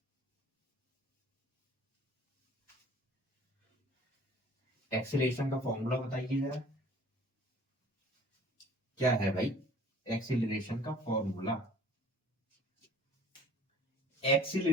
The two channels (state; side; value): normal; both; correlation 0.50